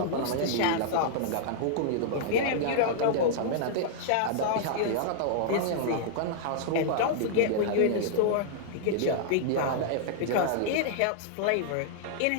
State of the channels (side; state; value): both; different; correlation -0.01